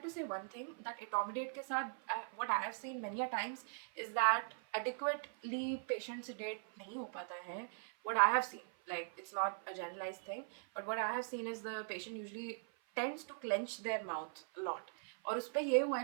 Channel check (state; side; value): silent; left; 51 dB below the other